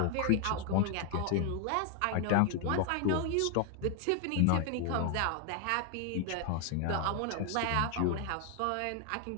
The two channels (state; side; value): different; both; correlation 0.00